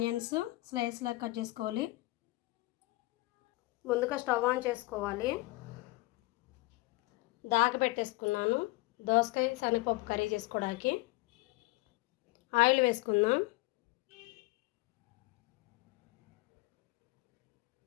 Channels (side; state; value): right; quieter; 21.7 dB